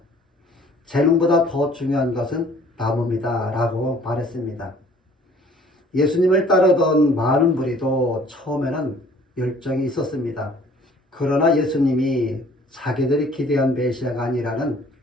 재능보다 더 중요한 것은 나무입니다. 라고 말했습니다. 예수님을 따르던 많은 무리도 처음에는 열정이 있었습니다. 그러나 예수님이 자기들이 기대한 메시아가 아니라는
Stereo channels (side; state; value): both; normal; correlation 0.55